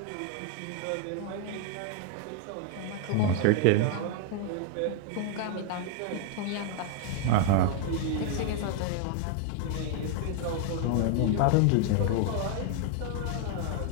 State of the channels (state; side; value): different; both; correlation 0.00